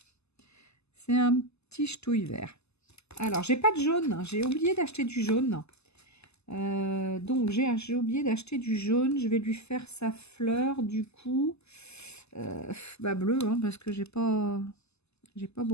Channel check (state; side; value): late; right; 0.80 ms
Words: c'est un petit ch'touille vert. Alors, j'ai pas de jaune, hein, j'ai oublié d'acheter du jaune. Donc, j'ai oublié d'acheter du jaune. Je vais lui faire sa fleur, du coup... bleu, hein, parce que j'ai pas